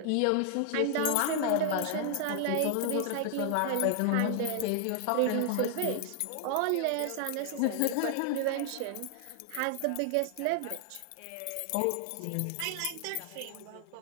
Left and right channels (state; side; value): different; both; correlation 0.00